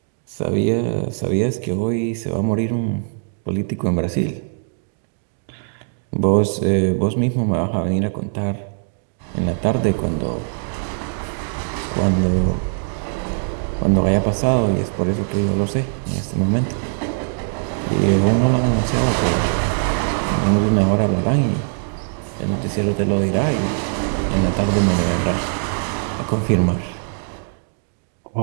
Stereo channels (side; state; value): left; silent; digital silence